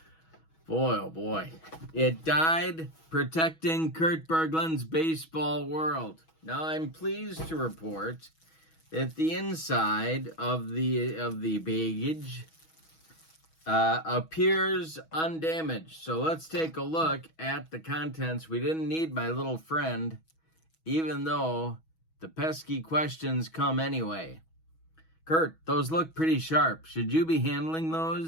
boy, oh boy. It died protecting Kurt Berglund's baseball world. Now I'm pleased to report that the inside of the baggage appears undamaged. So let's take a look at the contents. We didn't need my little friend, even though the pesky questions come anyway. Kurt, those look pretty sharp. Should you be handling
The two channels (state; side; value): late; right; 6.2 ms